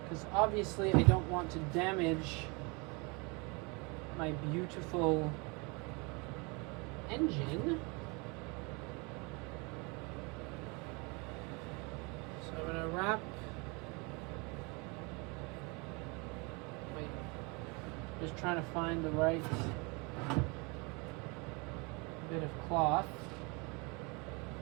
because obviously I don't want to damage my beautiful engine. So I'm going to wrap just trying to find the right bit of cloth.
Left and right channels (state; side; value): quieter; left; 29.4 dB